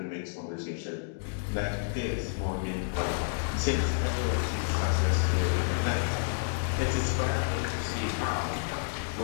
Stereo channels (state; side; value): silent; right; digital silence